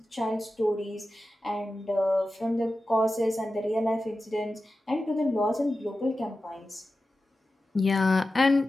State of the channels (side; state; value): both; normal; correlation 0.93